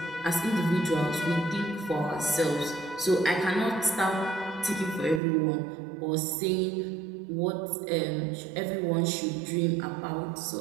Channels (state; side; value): drops out; left; at 5.2 s